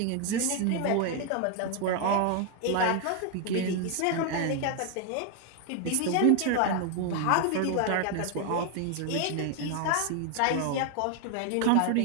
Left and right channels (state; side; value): different; both; correlation 0.01